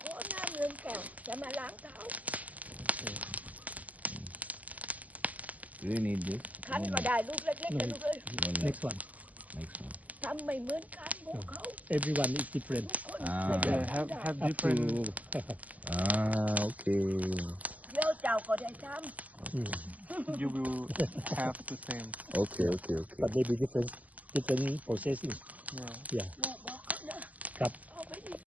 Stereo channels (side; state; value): left; late; 0.076 ms